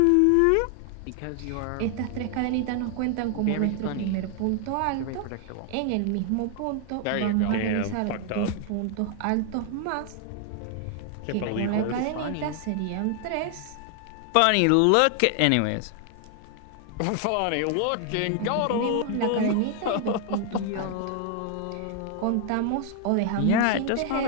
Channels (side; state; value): both; different; correlation 0.00